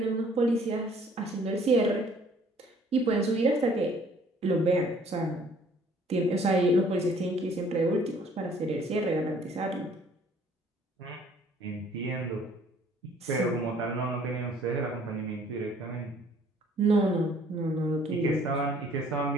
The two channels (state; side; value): normal; both; correlation 0.58